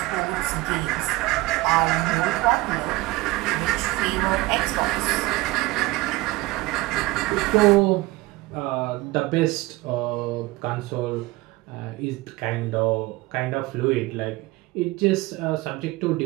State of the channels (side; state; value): left; quieter; 20.5 dB